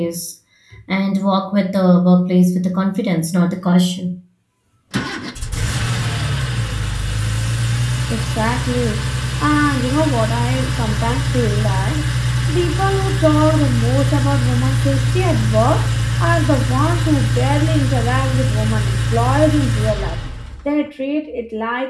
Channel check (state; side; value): identical; both; correlation 1.00